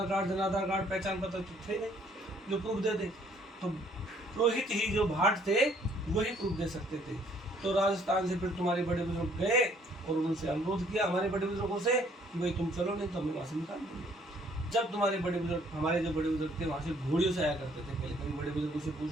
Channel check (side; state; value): both; normal; correlation 0.62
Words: कार्ड, जन आधार कार्ड, पहचान पत्र थे नहीं जो प्रूफ दे दे, तो पुरोहित ही जो भाट थे वही प्रूफ दे सकते थे। तो राजस्थान से फिर तुम्हारे बड़े बुजुर्ग गए और उनसे अनुरोध किया हमारे बड़े बुजुर्गों से कि भाई तुम चलो, नहीं तो हमें वहाँ से निकाल देंगे। जब तुम्हारे बड़े बुजुर्ग, हमारे जो बड़े बुजुर्ग थे, वहाँ से घोड़ियों से आया करते थे। पहले कभी बड़े बुजुर्गों से